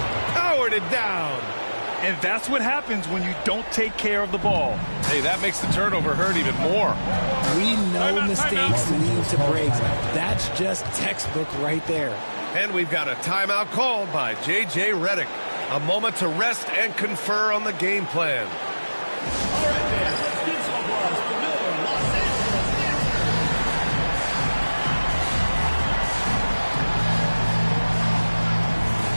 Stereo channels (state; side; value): inverted; both; correlation -1.00